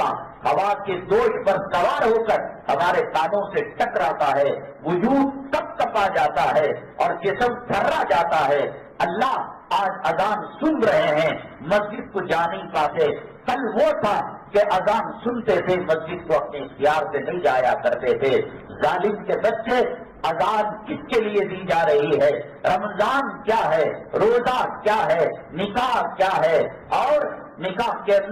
ہوا کے دوش پر سوار ہو کر ہمارے کانوں سے ٹکراتا ہے، وجود کپ کپا جاتا ہے اور جسم تھرا جاتا ہے. اللہ آج اذان سن رہے ہیں، مسجد کو جا نہیں پاتے. کل وہ تھا کہ اذان سنتے تھے، مسجد کو اپنے اختیار سے نہیں جایا کرتے تھے. ظالم کے بچے، اذان کس کے لیے دی جا رہی ہے؟ رمضان کیا ہے، روزہ کیا ہے، نکاح کیا ہے، اور نکاح کے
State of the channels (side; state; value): both; identical; correlation 1.00